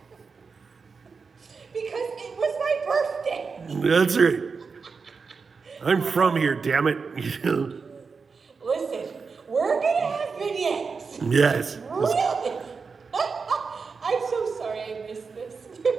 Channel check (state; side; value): quieter; left; 5.0 dB